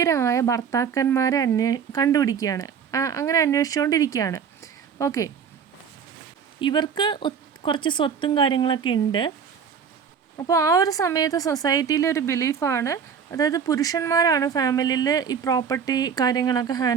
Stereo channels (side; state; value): left; quieter; 7.0 dB